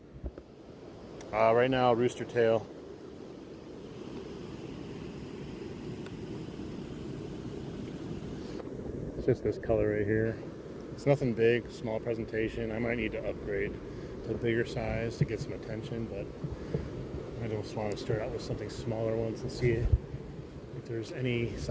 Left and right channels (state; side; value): identical; both; correlation 1.00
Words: Right now, rooster tail. It's just this color right here. It's nothing big, small presentation. I might need to upgrade to a bigger size to get some attention, but I just want to start out with something smaller once and see if there's any